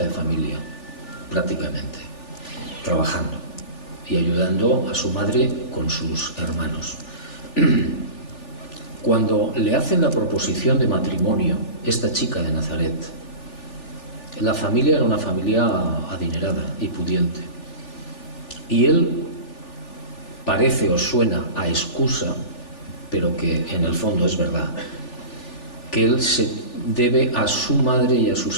familia, prácticamente, trabajando y ayudando a su madre con sus hermanos. Cuando le hacen la proposición de matrimonio, esta chica de Nazaret, la familia era una familia adinerada y pudiente. Y él parece o suena a excusa, pero que en el fondo es verdad, que él se debe a su madre y a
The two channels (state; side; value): late; right; 3.4 ms